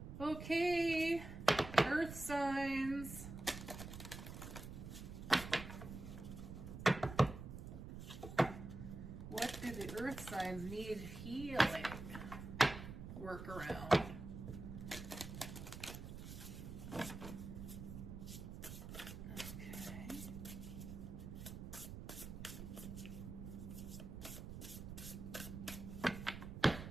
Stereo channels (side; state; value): right; noise; rumble, 9 dB below the sound